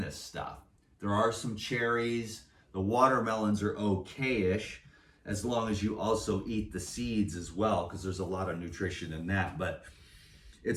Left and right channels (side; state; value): both; identical; correlation 1.00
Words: stuff. There are some cherries, the watermelons are okay-ish, as long as you also eat the seeds as well, because there's a lot of nutrition in that. But